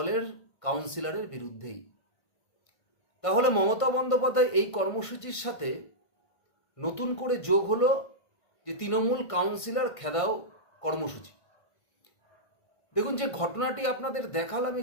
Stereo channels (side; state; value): right; late; 1.5 ms